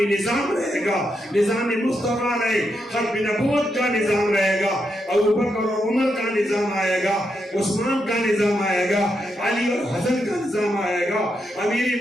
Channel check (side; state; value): both; normal; correlation 0.83